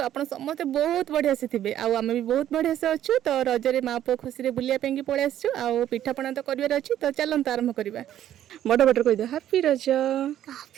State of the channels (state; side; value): quieter; left; 11.6 dB